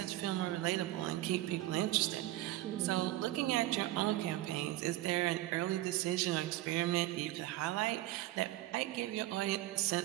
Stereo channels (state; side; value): quieter; left; 16.0 dB